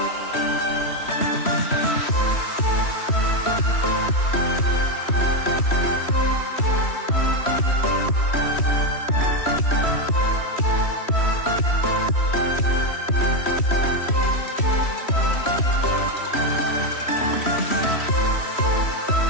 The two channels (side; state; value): right; late; 3.1 ms